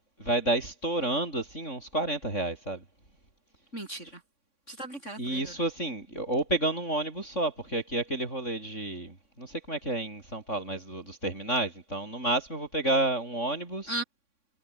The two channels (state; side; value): late; right; 3.6 ms